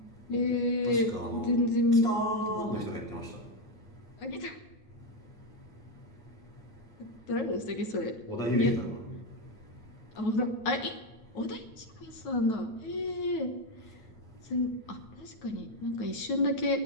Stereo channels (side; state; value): right; late; 9.3 ms